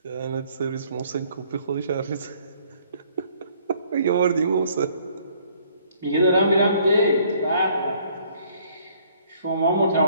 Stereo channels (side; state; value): both; inverted; correlation -0.61